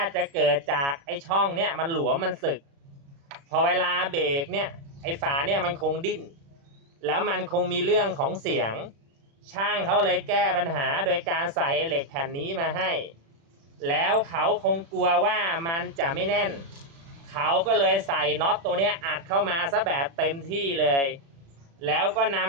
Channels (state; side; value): late; left; 36 ms